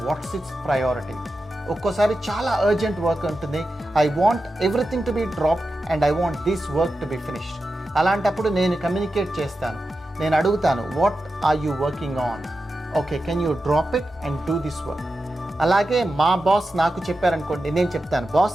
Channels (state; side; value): normal; both; correlation 0.91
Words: what's its priority. ఒక్కోసారి చాలా urgent work ఉంటుంది, I want everything to be drop and I want this work to be finished. అలాంటప్పుడు నేను communicate చేస్తాను, నేను అడుగుతాను, what are you working on? Okay, can you drop it and do this work. అలాగే మా boss నాకు చెప్పారనుకోండి, నేను చెప్తాను,